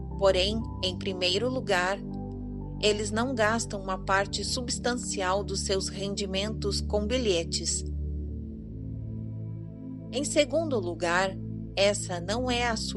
Porém, em primeiro lugar, eles não gastam uma parte substancial dos seus rendimentos com bilhetes. Em segundo lugar, essa não é a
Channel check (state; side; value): identical; both; correlation 1.00